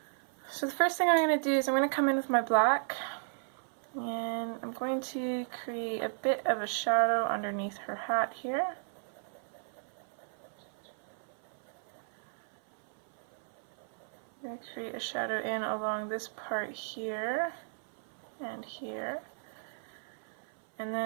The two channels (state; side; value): silent; left; 55 dB below the other